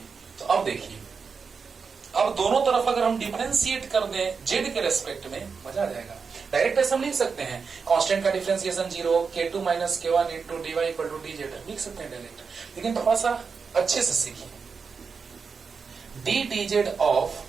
तो अब देखिए, अब दोनों तरफ अगर हम डिफरेंशिएट कर दें जेड के रेस्पेक्ट में, मजा आ जाएगा। डायरेक्ट ऐसे हम लिख सकते हैं, कांस्टेंट का differentiation 0, k2 minus k1 into dy equal to D Z, लिख सकते हैं डायरेक्ट, लेकिन थोड़ा सा अच्छे से सीखिए। D D Z of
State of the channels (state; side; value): quieter; left; 5.4 dB